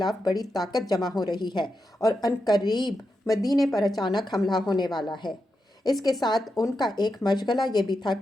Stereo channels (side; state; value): both; normal; correlation 0.87